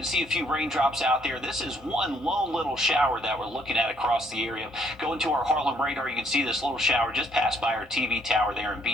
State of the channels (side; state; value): both; normal; correlation 0.66